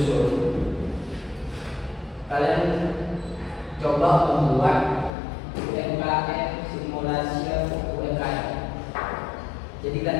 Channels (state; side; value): drops out; right; at 5.1 s